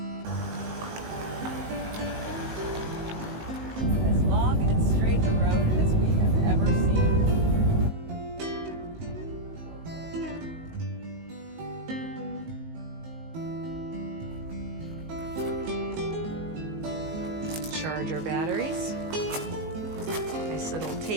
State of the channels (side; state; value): left; late; 19 ms